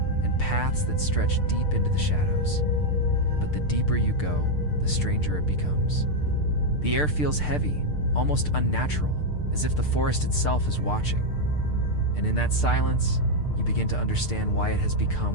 paths that stretch deep into the shadows. But the deeper you go, the stranger it becomes. The air feels heavy, almost unnatural, as if the forest itself is watching. And in that silence, you begin to understand why it has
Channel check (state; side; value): late; right; 6.7 ms